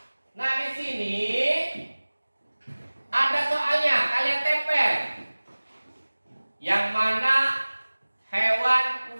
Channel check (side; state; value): both; inverted; correlation -1.00